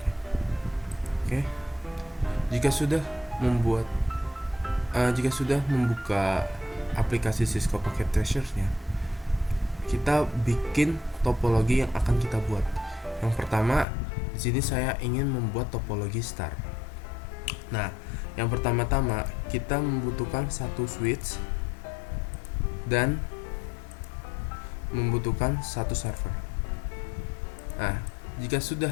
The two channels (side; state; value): right; drops out; at 13.9 s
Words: Oke, jika sudah membuka aplikasi Cisco Pocket Treasure-nya, kita bikin topologi yang akan kita buat. Yang pertama, di sini saya ingin membuat topologi star. Nah, yang pertama-tama kita membutuhkan satu switch dan membutuhkan satu server. Nah, jika sudah